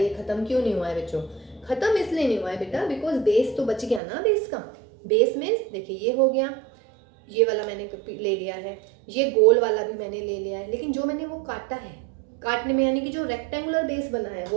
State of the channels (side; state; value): left; drops out; at 4.0 s